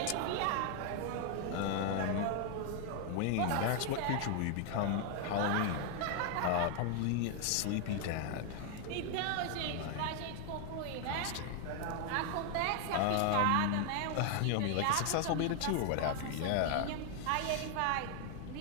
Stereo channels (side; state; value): both; different; correlation 0.00